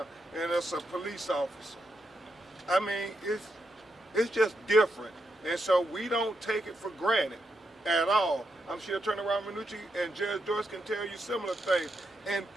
and it's a police officer. I mean, it's just different. And so we don't take it for granted at all. I'm sure Attorney Ramanucci and Judge Doyce can tell you similar things.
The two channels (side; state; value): both; normal; correlation 0.83